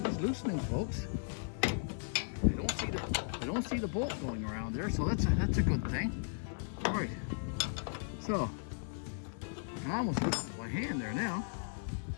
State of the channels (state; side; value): silent; right; digital silence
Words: loosening, folks. I don't see the bolt going around there, so that's a good thing. All right, so I almost lifted my hand there now.